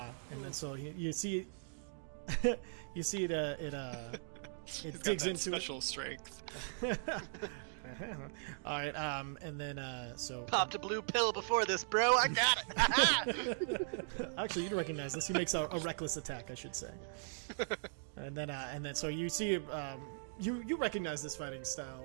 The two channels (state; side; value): silent; left; digital silence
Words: then so you see, you see it digs into it. Special strength. All right, and then so Popped a blue pill before this, bro. I got it. actually you'd recognize this. He makes a reckless attack, I should say. And then so you see you recognize this fighting